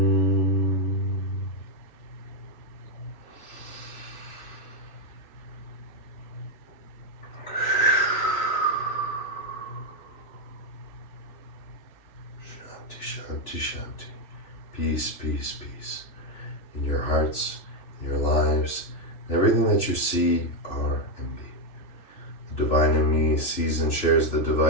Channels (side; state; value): right; late; 3.0 ms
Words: Shanti, Shanti. Peace, peace, peace. In your hearts, in your lives, and everything that you see, are, and be. The divine in me sees and shares the